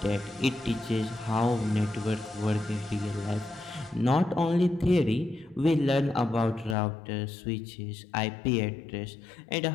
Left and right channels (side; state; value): right; drops out; at 6.8 s